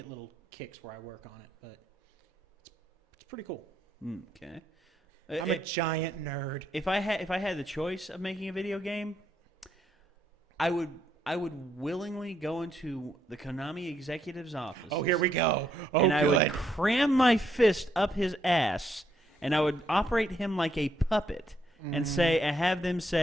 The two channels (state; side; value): normal; both; correlation 0.75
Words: little kicks where I work on it, but it's pretty cool. Okay. I'm a giant nerd. If I had the choice of making a video game, I would willingly go into the Konami executive's office. Oh, here we go. Oh, and good. I would cram my fist up his ass, and I would operate him like a puppet, and have them